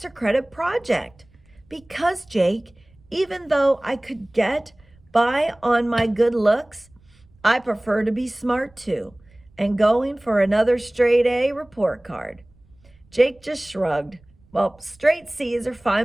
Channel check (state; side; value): noise; right; rumble, 30 dB below the sound